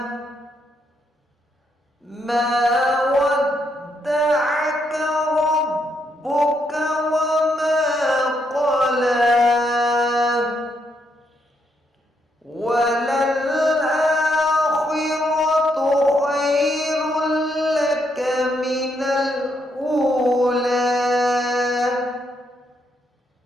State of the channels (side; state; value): both; normal; correlation 0.77